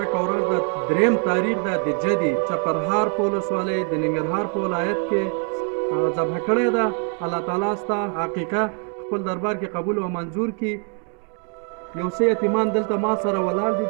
ورځ د 3 تاریخ ده د جدي چپرهار په ولسوالۍ د ننګرهار په ولایت کې ذبح کړې ده. الله تعالی ستا حقیقه خپل دربار کې قبول او منظور کړي. یو څه یتیمان دلته ما سره ولاړ دي،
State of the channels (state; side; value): quieter; left; 39.5 dB